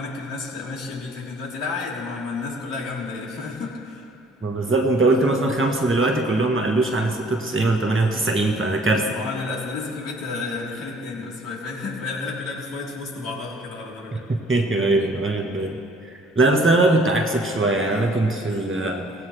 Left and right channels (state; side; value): normal; both; correlation 0.57